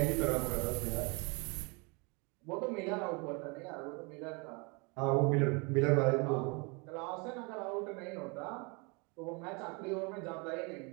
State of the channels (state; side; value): quieter; left; 30.8 dB